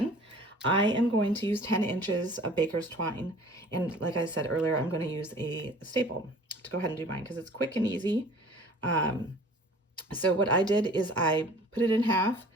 I am going to use 10 inches of baker's twine. And like I said earlier, I'm going to use a staple to go ahead and do mine because it's quick and easy. So what I did is I put it in half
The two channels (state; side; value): normal; both; correlation 0.48